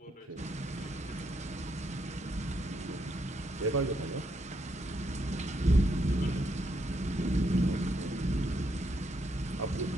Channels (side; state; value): both; normal; correlation 0.77